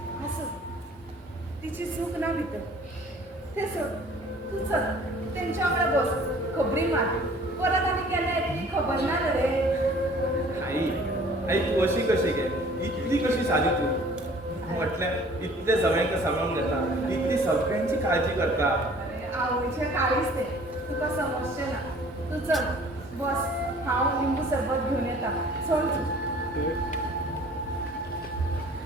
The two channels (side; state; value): both; normal; correlation 0.51